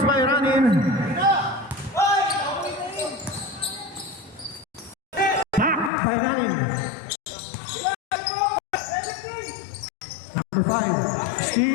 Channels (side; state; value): right; drops out; at 5.9 s